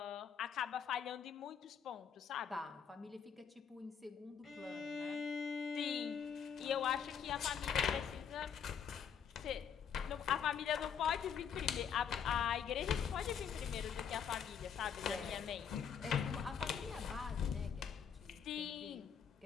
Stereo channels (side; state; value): right; quieter; 7.5 dB